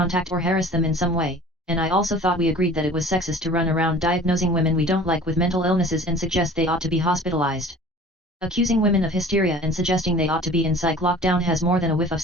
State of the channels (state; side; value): normal; both; correlation 0.45